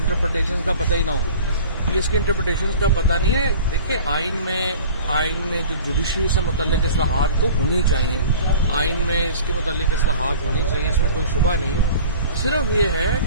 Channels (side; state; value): both; inverted; correlation -0.43